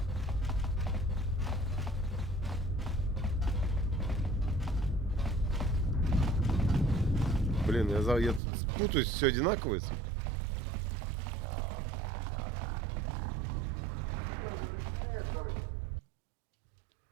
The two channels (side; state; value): left; drops out; at 8.4 s